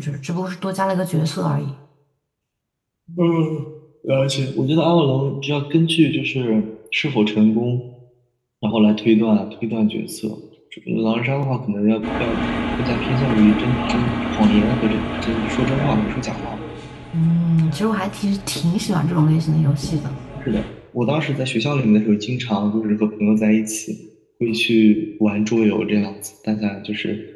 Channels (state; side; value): identical; both; correlation 1.00